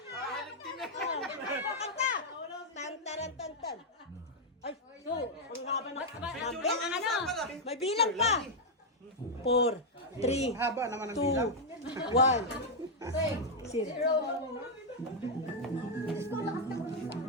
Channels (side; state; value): both; normal; correlation -0.02